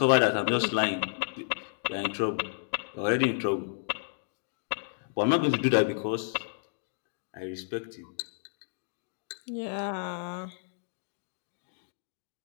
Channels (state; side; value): silent; right; digital silence